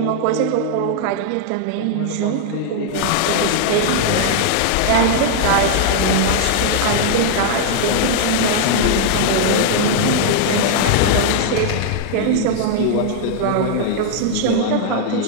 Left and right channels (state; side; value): different; both; correlation -0.01